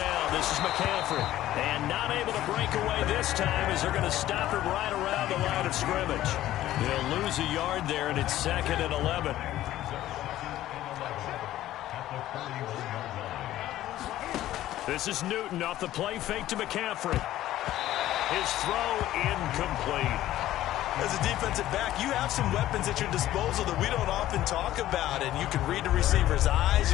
this is McCaffrey. And not able to break away this time as they're going to stop him right around the line of scrimmage. They'll lose a yard there, and it's 2nd and 11. This is Newton off the play fake to McCaffrey. His throw incomplete. As a defensive back, you have some weapons at your disposal that we don't often talk about. And you can read the receiver's eyes,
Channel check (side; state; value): right; quieter; 14.0 dB